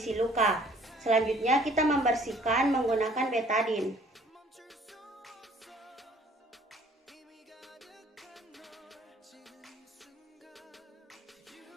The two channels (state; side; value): normal; both; correlation 0.56